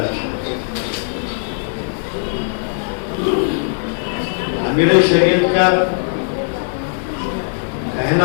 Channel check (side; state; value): right; silent; digital silence